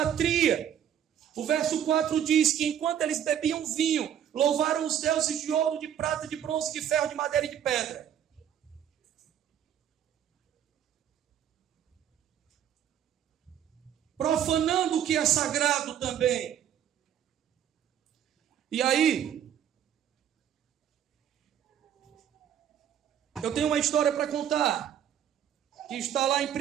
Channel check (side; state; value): left; quieter; 9.7 dB